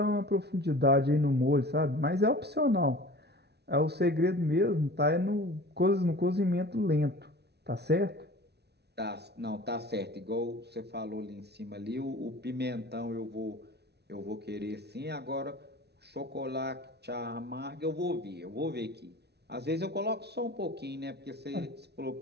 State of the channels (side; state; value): left; late; 0.49 ms